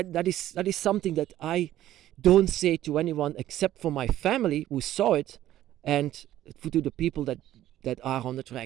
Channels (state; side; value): quieter; left; 13.3 dB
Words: is something that I don't say to anyone except for my family who saw it, and to the people that are on the